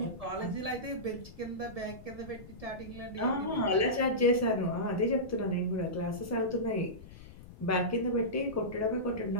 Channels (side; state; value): left; noise; rumble, 17 dB below the sound